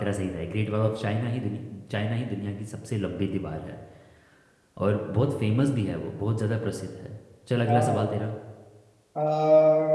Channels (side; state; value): both; identical; correlation 1.00